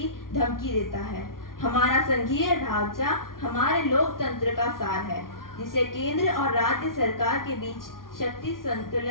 धमकी देता है। हमारा संघीय ढांचा हमारे लोकतंत्र का सार है, जिसे केंद्र और राज्य सरकार के बीच शक्ति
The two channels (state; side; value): late; right; 0.92 ms